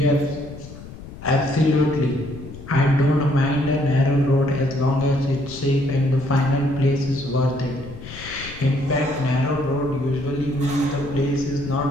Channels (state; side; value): noise; left; rumble, 14 dB below the sound